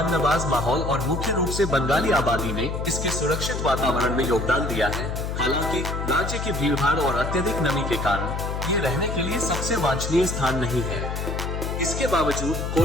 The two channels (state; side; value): noise; left; hum, 3 dB below the sound